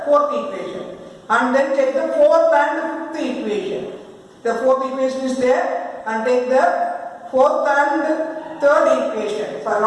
fourth equation. And then take the fourth and fifth equation. The fourth equation is there. And take the fourth and third equation. So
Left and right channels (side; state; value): both; identical; correlation 1.00